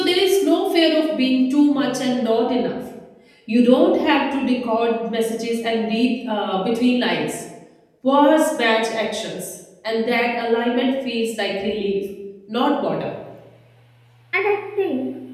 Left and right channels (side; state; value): both; identical; correlation 1.00